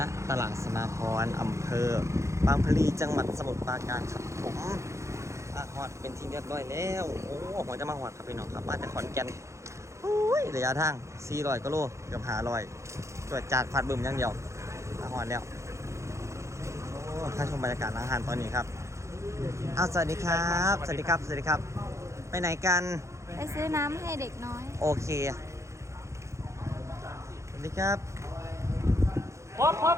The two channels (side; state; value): left; late; 0.14 ms